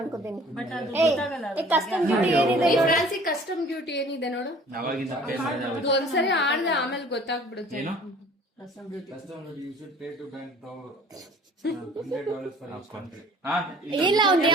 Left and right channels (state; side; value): normal; both; correlation 0.50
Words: ಅನ್ಕೋತೀನಿ. ಕಸ್ಟಮ್ ಡ್ಯೂಟಿ ಏನಿದೆ? ಫ್ರಾನ್ಸಿ ಕಸ್ಟಮ್ ಡ್ಯೂಟಿ ಏನಿದೆ ನೋಡು. ಅವಾಗಿಂದ pay ಮಾಡಿದೆ ಅವಾಗ. ಒಂದ್ಸರಿ ಆಡ್ದೆ ಆಮೇಲೆ ಗೊತ್ತಾಗ್ಬಿಡುತ್ತೆ. ಏನು? you should pay to bank $100 for each country. ಹಾ? ಇಲ್ಲ, ಅವ್ನ್